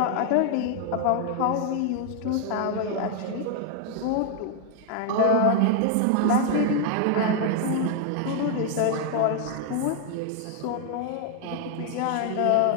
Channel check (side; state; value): both; different; correlation 0.00